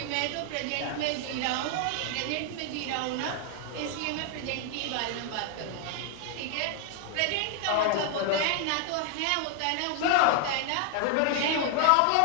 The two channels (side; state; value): both; different; correlation 0.00